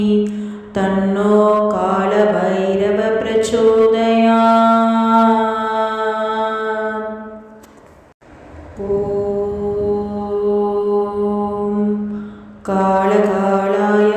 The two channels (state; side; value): identical; both; correlation 1.00